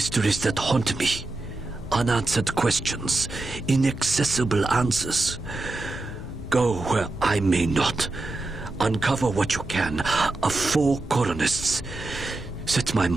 that haunt me. Unanswered questions, inaccessible answers. Go where I may not. Uncover what you can of 4 colonists. Set my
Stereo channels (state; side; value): quieter; left; 3.0 dB